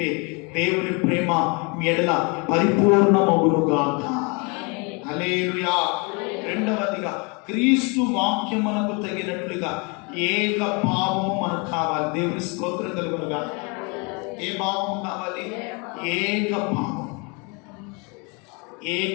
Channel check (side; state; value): right; quieter; 31.4 dB